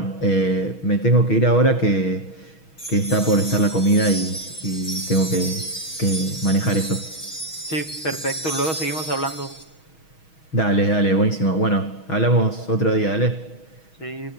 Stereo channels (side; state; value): right; late; 6.3 ms